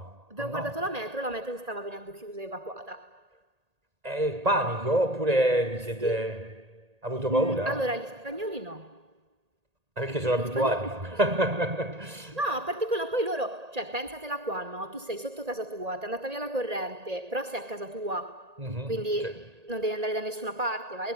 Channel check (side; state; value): left; late; 1.8 ms